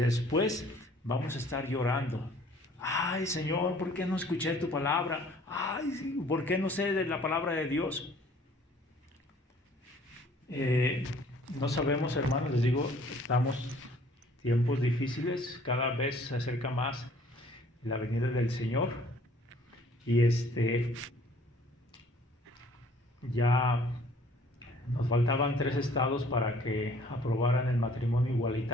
vamos a estar llorando. Ay, Señor, ¿por qué no escuché tu palabra? Ay, ¿por qué no sé de la palabra de Dios? No sabemos, hermanos, les digo, estamos tiempos difíciles, cada vez se acerca más la venida del Señor, y ya nos faltaban 3 estados para que aprobaran el matrimonio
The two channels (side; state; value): both; normal; correlation 0.56